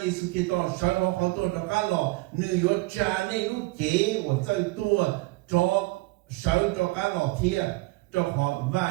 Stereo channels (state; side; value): quieter; left; 22.6 dB